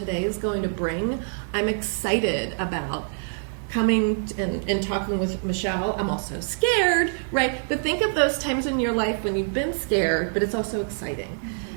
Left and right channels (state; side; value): silent; left; 62 dB below the other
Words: is going to bring. I'm excited about coming and talking with Michelle. I'm also scared, right? But think of those times in your life when you've been scared, but it's also exciting.